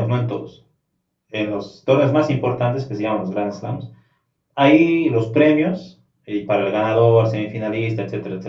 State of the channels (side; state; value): both; identical; correlation 1.00